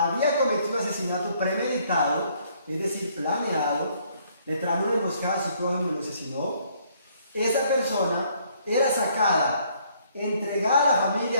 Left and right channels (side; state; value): both; inverted; correlation -0.65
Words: cometido asesinato premeditado, es decir, planeado, le tramó una emboscada a su prójimo y lo asesinó, esa persona era sacada, entregada a la